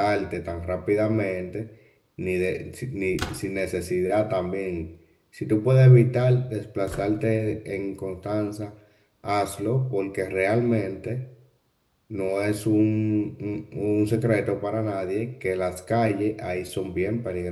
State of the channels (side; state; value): both; identical; correlation 1.00